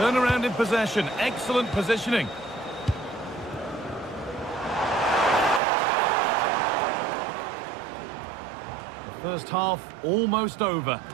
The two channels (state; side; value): drops out; left; at 5.6 s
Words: in possession. Excellent positioning. The first half almost over.